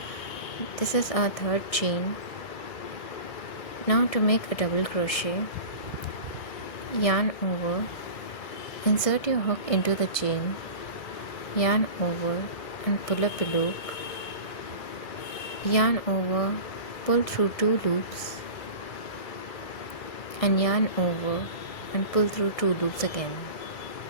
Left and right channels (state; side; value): late; right; 1.6 ms